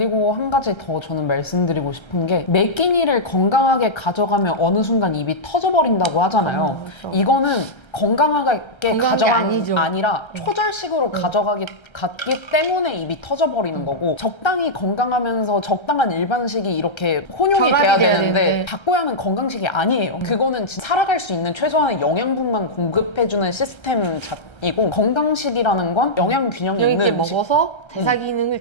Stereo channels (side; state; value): right; late; 1.3 ms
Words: 한 가지 더 저는 말씀드리고 싶은 게 매 끼니를 건강하게 가져가면 어느 순간 입이 터져버린다고 하잖아요. 그렇죠. 이거는 건강하게 가져가는 게 아니죠. 아니라 초절식으로 갔기 때문에 입이 터져버리는 거고 적당히 건강하면서 적당한 일반식이 이렇게 혼용이 돼야 되는데 닭고야는 건강식이 아니에요. 그거는 진짜 살아갈 수 있는 최소한의 영양분만 공급해주는 시스템이고 건강식이라는 건 영양 균형이 있는 음식. 먹어서 대사 기능을